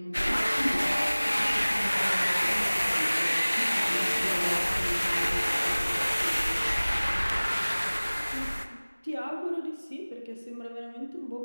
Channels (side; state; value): both; inverted; correlation -1.00